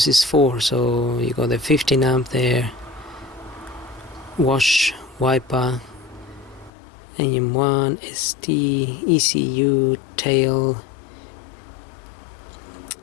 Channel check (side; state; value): right; drops out; at 6.7 s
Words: is for. So you got the 15 amp there, wash, wiper, AM1, ST, ECU, tail,